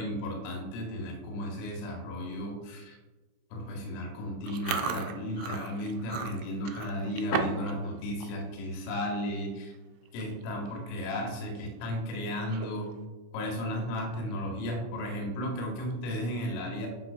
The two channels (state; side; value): late; right; 25 ms